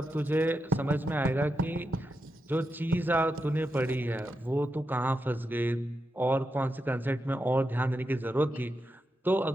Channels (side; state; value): both; normal; correlation 0.87